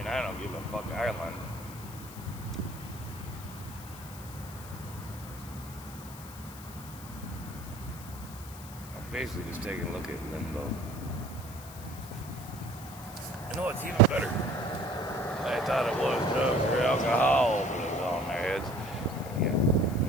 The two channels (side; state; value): left; noise; hiss, 16 dB below the sound